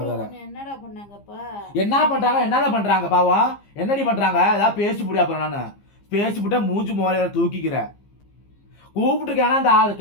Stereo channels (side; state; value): right; late; 15 ms